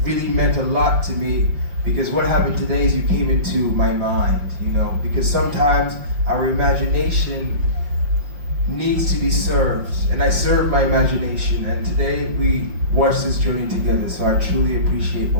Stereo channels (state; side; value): late; left; 5.6 ms